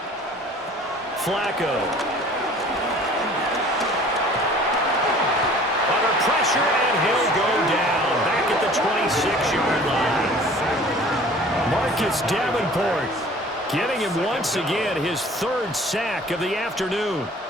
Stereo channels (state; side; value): normal; both; correlation 0.49